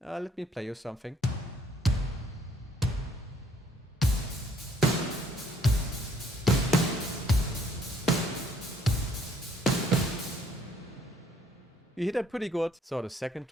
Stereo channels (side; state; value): both; normal; correlation 0.64